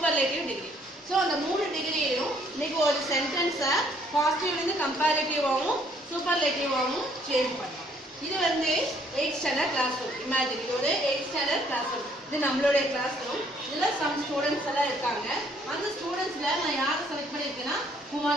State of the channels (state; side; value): normal; both; correlation 0.64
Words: degree. So அந்த மூணு டிகிரியும் இன்னைக்கு ஒரு சென்டென்ஸை பாசிட்டிவ்லேருந்து கம்பேரிட்டிவாகவும் சூப்பர்லேட்டிவாகவும் சேஞ்ச் பண்ணலாம். இது வந்து 8th standard class room. Imagine இது ஒரு 8th ஸ்டாண்டர்ட் கிளாஸ் ரூம். இது நம்மளுடைய கிளாஸ் ரூம். இதில் சம் ஸ்டூடெண்ட்ஸ் எல்லாம் இருக்காங்க. அந்த ஸ்டூடெண்ட்ஸில் நான் யாரை செலக்ட் பண்ணியிருக்கேன்னா